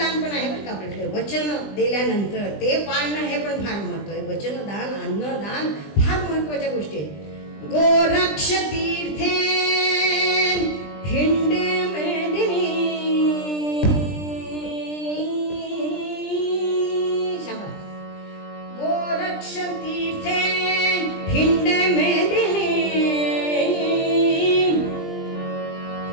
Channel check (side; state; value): right; late; 20 ms